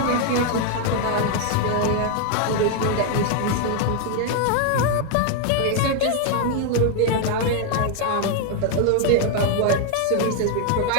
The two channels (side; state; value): both; different; correlation 0.01